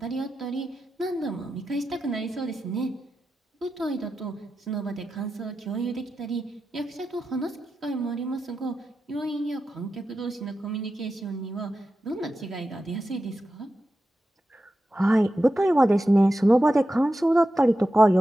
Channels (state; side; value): normal; both; correlation 0.91